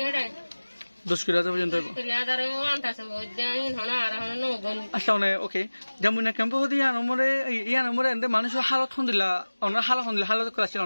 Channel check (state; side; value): inverted; both; correlation -1.00